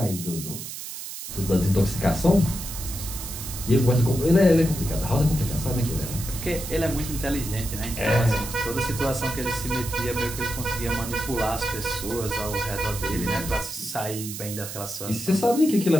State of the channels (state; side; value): noise; right; hiss, 9 dB below the sound